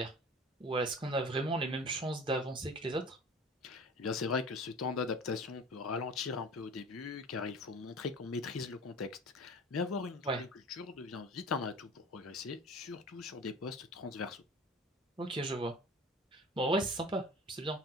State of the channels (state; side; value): normal; both; correlation 0.40